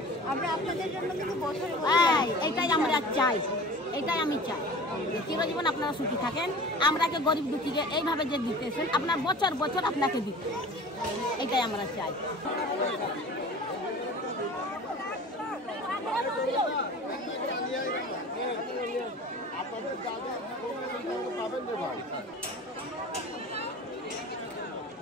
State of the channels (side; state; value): both; normal; correlation 0.40